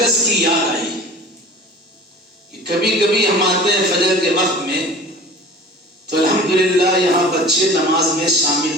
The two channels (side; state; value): both; normal; correlation 0.40